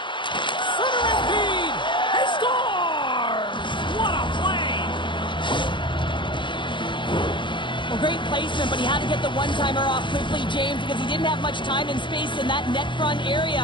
Centering feed. He scores! What a play! Well, great placement, but he had to get the one-timer off quickly, James, because he didn't have much time and space in that net front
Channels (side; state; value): right; late; 0.23 ms